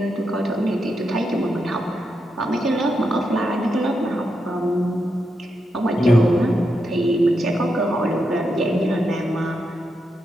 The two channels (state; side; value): normal; both; correlation 0.84